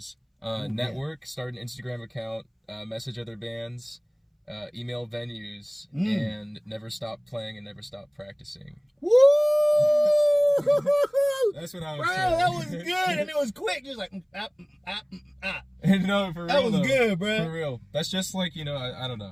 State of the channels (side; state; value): both; identical; correlation 1.00